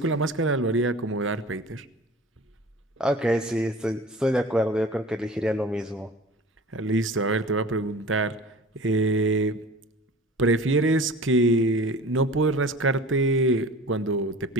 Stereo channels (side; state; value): both; normal; correlation 0.40